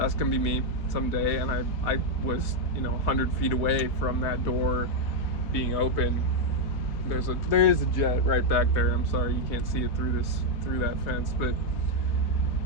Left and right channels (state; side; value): late; right; 3.3 ms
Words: gonna be me someday. And I was, 100 feet away from that door being open. There is a jet right back there. I'm sorry you can't see it through that fence, but